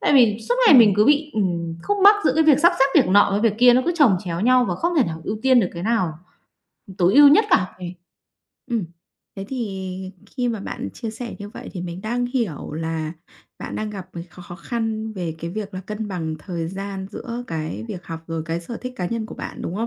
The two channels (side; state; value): both; identical; correlation 1.00